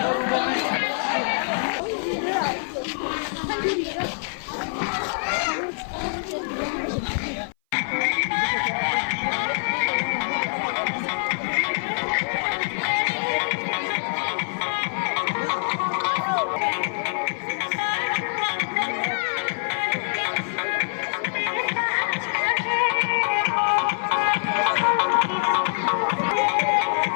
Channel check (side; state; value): right; silent; 58 dB below the other